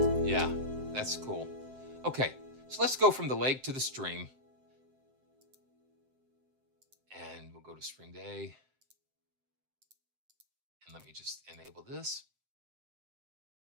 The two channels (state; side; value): late; left; 7.7 ms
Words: That's cool. Okay, so let's go from the lake to the stream. And we'll go to Spring Day. And let me just enable this.